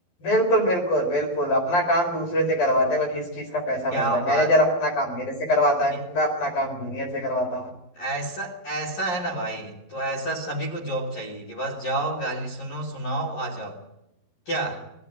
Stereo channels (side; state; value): right; late; 11 ms